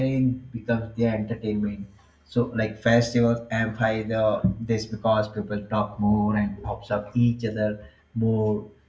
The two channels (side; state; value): both; identical; correlation 1.00